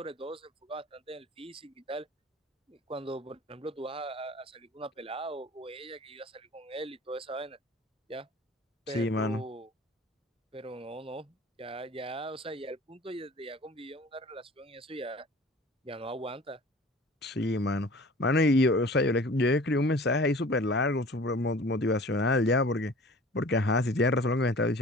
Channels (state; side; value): normal; both; correlation 0.44